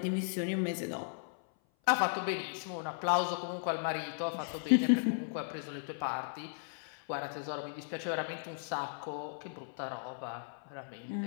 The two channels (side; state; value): right; silent; 54 dB below the other